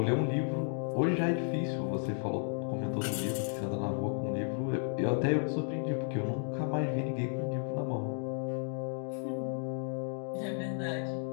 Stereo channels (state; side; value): silent; right; 55 dB below the other